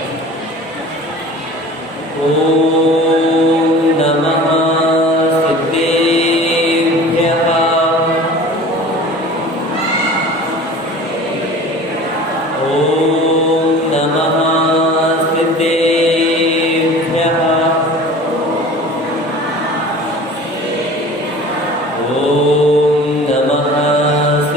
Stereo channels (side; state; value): both; normal; correlation 0.41